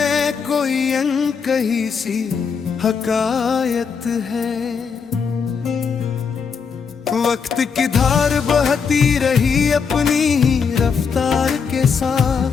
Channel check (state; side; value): quieter; right; 6.0 dB